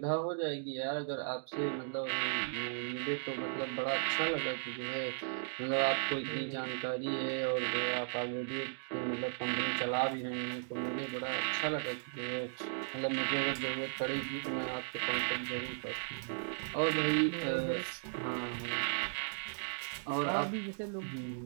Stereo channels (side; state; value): left; silent; digital silence